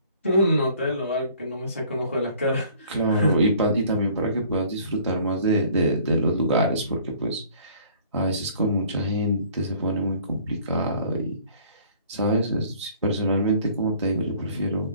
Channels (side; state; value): both; inverted; correlation -0.54